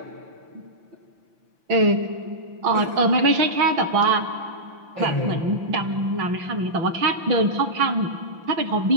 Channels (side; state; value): left; late; 5.9 ms